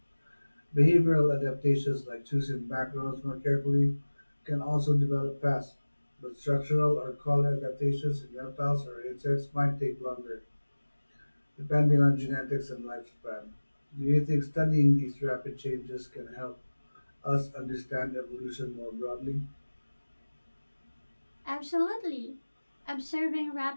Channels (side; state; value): both; inverted; correlation -1.00